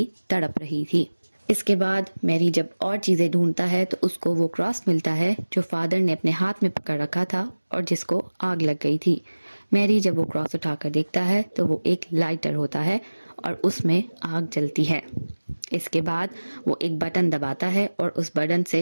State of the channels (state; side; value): inverted; both; correlation -1.00